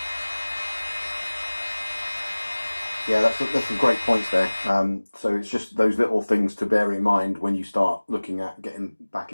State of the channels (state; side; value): inverted; both; correlation -1.00